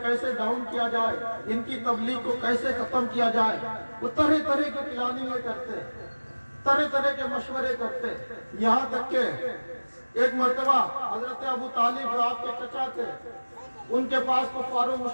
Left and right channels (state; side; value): inverted; both; correlation -1.00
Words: کیسے ڈاؤن کیا جائے، ان کی تبلیغ کو کیسے ختم کیا جائے۔ وہ طرح طرح کی پلاننگیں کرتے، طرح طرح کے مشورے کرتے، یہاں تک کہ ایک مرتبہ حضرت ابو طالب جو آپ کے چچا تھے، ان کے پاس کفار و